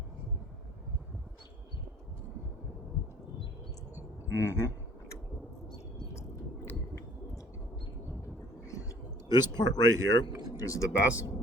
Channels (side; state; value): both; normal; correlation 0.54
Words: This part right here is the best